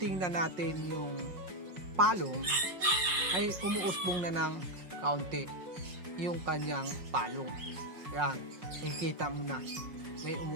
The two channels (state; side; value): late; left; 5.5 ms